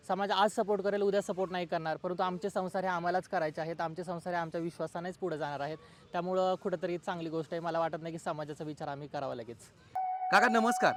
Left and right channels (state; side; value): identical; both; correlation 1.00